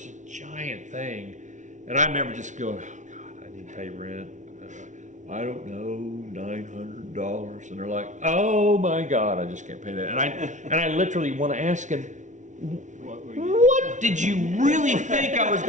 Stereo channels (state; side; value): late; left; 0.36 ms